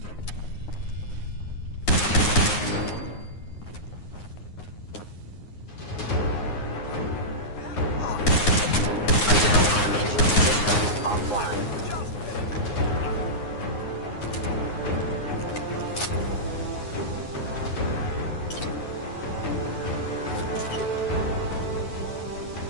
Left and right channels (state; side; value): late; right; 9.6 ms